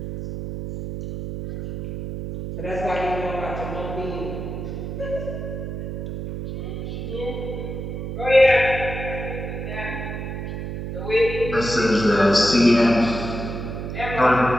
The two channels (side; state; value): right; noise; hum, 6 dB below the sound